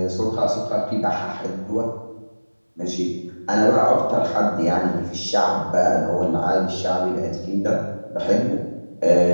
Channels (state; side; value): inverted; both; correlation -1.00